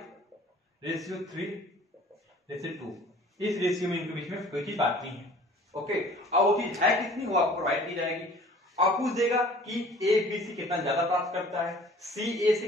इस रेशियो में इनके बीच में कोई चीज बांटनी है। ओके, अब वो चीज है कितनी, वो आपको प्रोवाइड की जाएगी। आप पूछ देगा कि A B से कितना ज्यादा प्राप्त करता है, C A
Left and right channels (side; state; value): both; normal; correlation 0.49